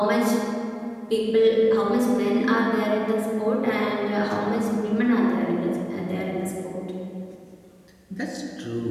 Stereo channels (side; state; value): both; identical; correlation 1.00